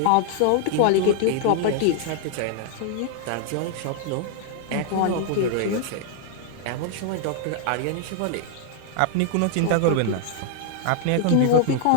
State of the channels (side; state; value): both; different; correlation 0.00